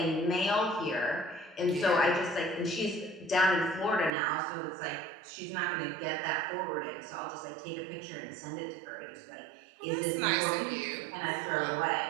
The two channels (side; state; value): left; drops out; at 4.1 s